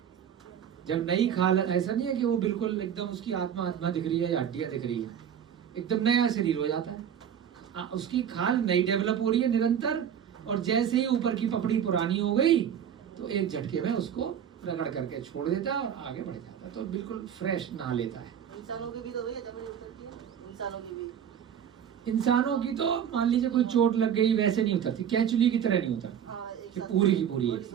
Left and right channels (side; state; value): left; quieter; 8.9 dB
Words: जब नई खाल, ऐसा नहीं है कि वो बिल्कुल एकदम उसकी आत्मा दिख रही है या हड्डियां दिख रही है, एकदम नया शरीर हो जाता है। उसकी खाल नई डेवलप हो रही है निरंतर, और जैसे ही ऊपर की पपड़ी पुरानी हो गई तो एक झटके में उसको रगड़ करके छोड़ देता है और आगे बढ़ जाता है, तो बिल्कुल फ्रेश नहा लेता है। इंसानों की भी तो भैया जब उतरती है, इंसानों की तो मान लीजिए कोई चोट लग गई, वैसे नहीं उतरती, कैचुली की तरह नहीं उतरती, कि पूरी की पूरी एक